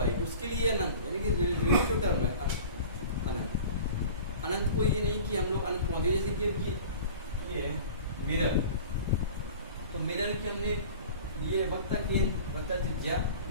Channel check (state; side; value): inverted; both; correlation -0.40